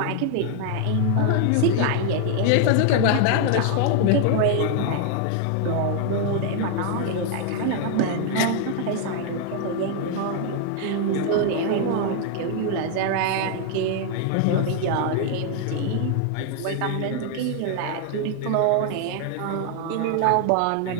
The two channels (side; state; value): both; different; correlation 0.00